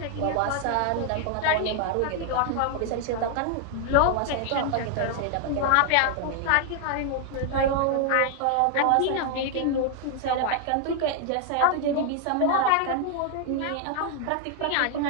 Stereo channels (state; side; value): different; both; correlation 0.00